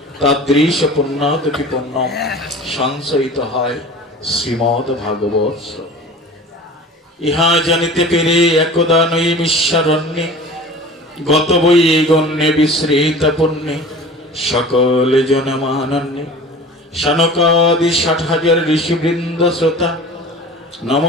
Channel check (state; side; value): normal; both; correlation 0.40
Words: তাদৃশ পুণ্যাদপি পুণ্যম সঞ্চয়িত হয় শ্রীমদ ভাগবত। ইহা জানিতে পেরে একদা নৈমিষারণ্যে গত বই গণ্যে বিশ্রিত পুণ্যে সকল জনমানন্যে শানকাদি ৬০,০০০ ঋষিবৃন্দ শ্রোতা